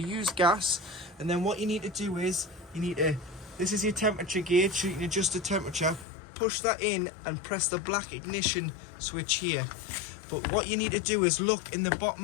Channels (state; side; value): drops out; right; at 6.1 s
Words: gas, and then what you need to do is this is your temperature gauge, so you can adjust the temperature, push that in and press the black ignition switch here. But what you need to do is look in the